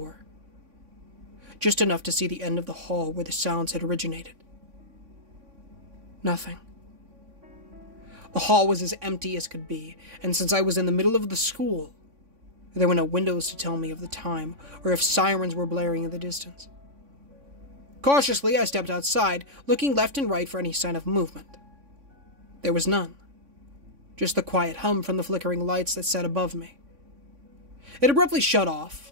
just enough to see the end of the hall where the sounds had originated. Nothing. The hall was as empty as could be, and since I was in the middle of the school, there were no windows to tell me of the time or if sirens were blaring in the distance. Cautiously, I stepped outside, looking left and right for any sign of movement. There was none. Just the quiet hum from the flickering lights that sat above me. It abruptly shut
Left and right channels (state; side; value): late; left; 3.5 ms